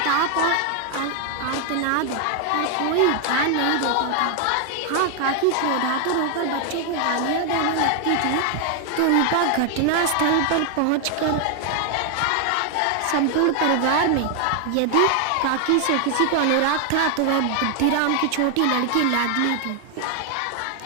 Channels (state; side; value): different; both; correlation 0.00